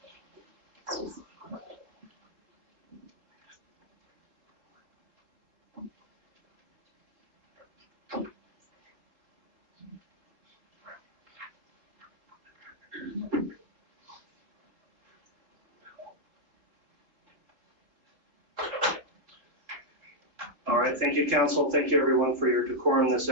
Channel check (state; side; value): late; left; 3.9 ms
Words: All right, thank you, council. Thank you, everyone, for your decorum this